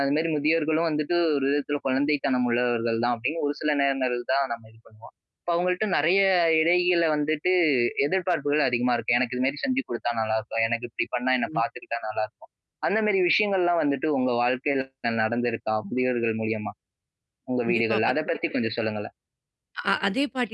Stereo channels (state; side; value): identical; both; correlation 1.00